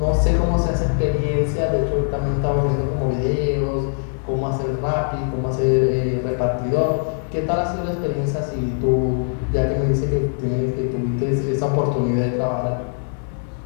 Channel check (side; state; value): right; silent; digital silence